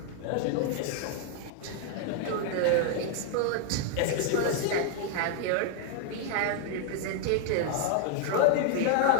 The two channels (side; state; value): both; different; correlation 0.00